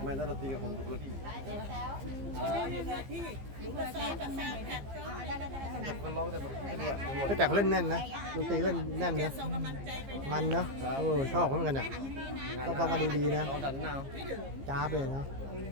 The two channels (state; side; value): late; left; 15 ms